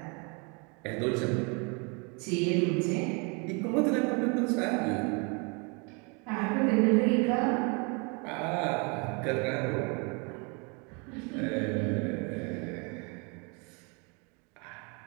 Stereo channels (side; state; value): left; quieter; 32.6 dB